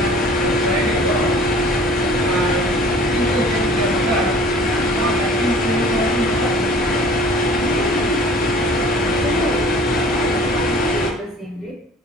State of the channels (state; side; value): normal; both; correlation 0.49